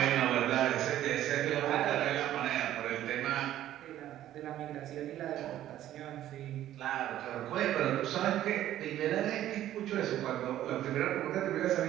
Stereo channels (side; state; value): left; quieter; 12.7 dB